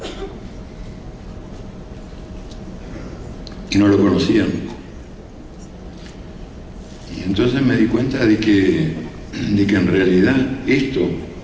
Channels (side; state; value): both; identical; correlation 1.00